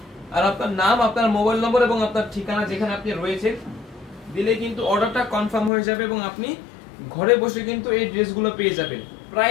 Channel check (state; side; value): drops out; right; at 5.7 s